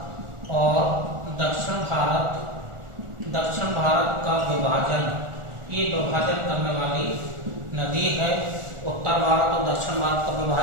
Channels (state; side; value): late; left; 1.4 ms